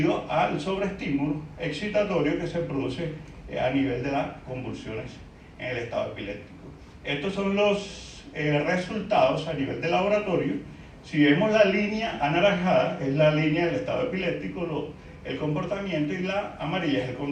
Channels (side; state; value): both; identical; correlation 1.00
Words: al sobreestímulo excitatorio que se produce a nivel de las convulsiones en el estado epiléptico. Estos son los resultados a nivel de laboratorio. Si vemos la línea anaranjada, es la línea del estado epiléptico, el comportamiento, y la amarilla es el